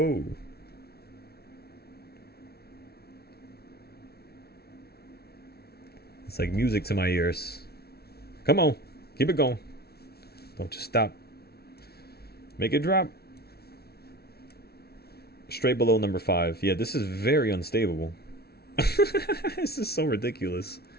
It's like music to my ears. Come on. Keep it going. Don't just stop. Make it drop. Straight below number 5. Yeah, this is very unstable. This is so ridiculous.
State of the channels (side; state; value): right; late; 0.45 ms